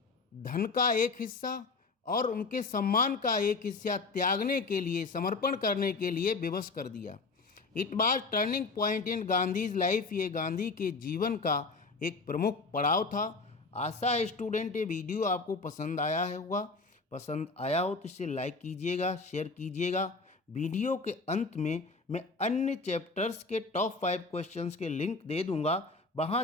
धन का एक हिस्सा और उनके सम्मान का एक हिस्सा त्यागने के लिए, समर्पण करने के लिए विवश कर दिया। It was turning point in Gandhi's life, ये गांधी के जीवन का एक प्रमुख पड़ाव था। आशा है स्टूडेंट ये वीडियो आपको पसंद आया होगा, पसंद आया हो तो इसे लाइक कीजिएगा, शेयर कीजिएगा। वीडियो के अंत में मैं अन्य चैप्टर्स के टॉप 5 क्वेश्चंस के लिंक दे दूंगा,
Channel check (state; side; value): quieter; right; 3.9 dB